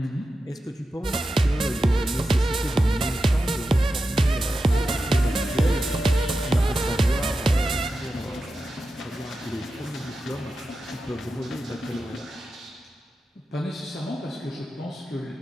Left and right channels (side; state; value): both; normal; correlation 0.91